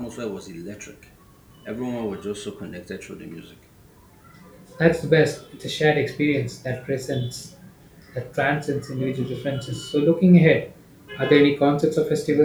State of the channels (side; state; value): both; identical; correlation 1.00